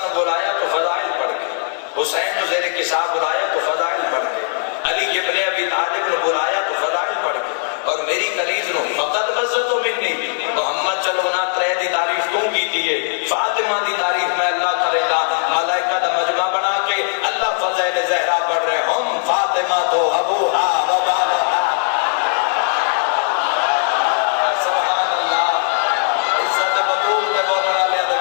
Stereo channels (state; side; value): silent; right; 67 dB below the other